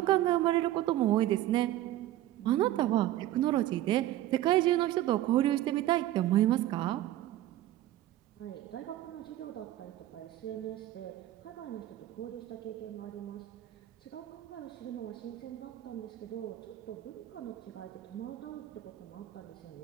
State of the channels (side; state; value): left; quieter; 14.2 dB